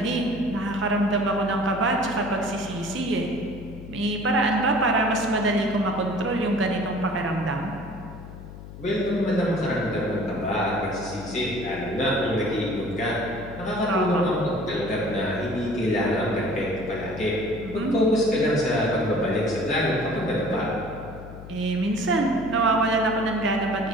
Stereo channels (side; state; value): left; noise; hum, 14 dB below the sound